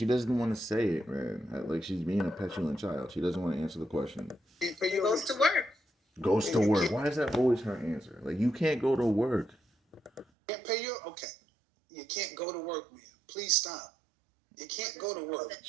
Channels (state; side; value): drops out; left; at 10.2 s